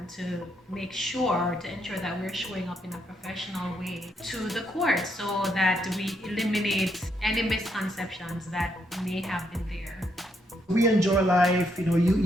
to make sure, to ensure that we're showing up in a professional way to the court so that we eliminate any misconceptions that may have been there. We enjoy life,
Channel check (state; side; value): normal; both; correlation 0.76